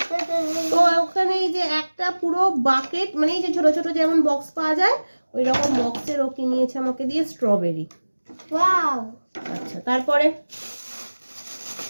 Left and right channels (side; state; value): both; inverted; correlation -1.00